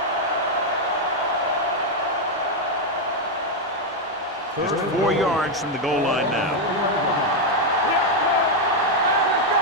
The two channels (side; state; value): both; normal; correlation 0.02